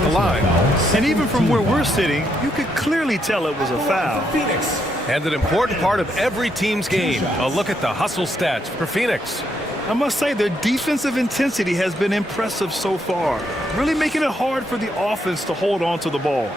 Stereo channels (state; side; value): normal; both; correlation 0.77